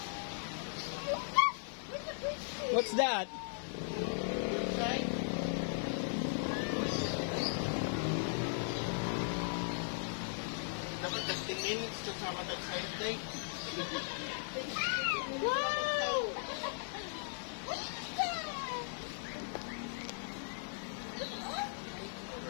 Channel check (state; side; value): silent; right; digital silence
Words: What's that? Dapat 15 minutes to sa matag side day. Wow!